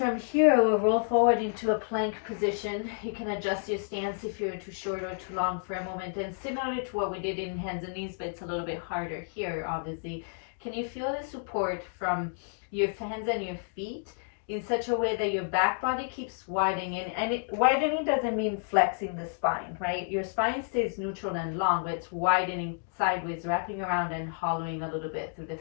here, we'll roll forward into a plank position. You can adjust your stance if you're too short or too long for a moment. And similar to what we did in hands and knees, but it's a little bit harder here, obviously. Can you feel the support from your hands and your feet in such a way that your back body keeps widening? And widening doesn't mean flexing the spine, right? Your spine stays neutral and long, but it's widening sideways, wrapping around and hollowing a little bit through the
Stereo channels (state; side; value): silent; right; digital silence